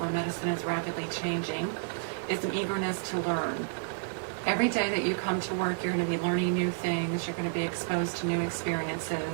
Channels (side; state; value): left; silent; digital silence